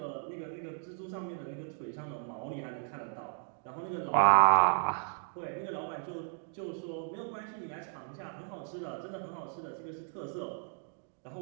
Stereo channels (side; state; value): left; silent; 55 dB below the other